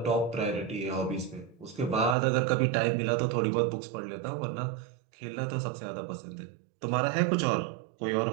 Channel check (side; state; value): left; drops out; at 2.1 s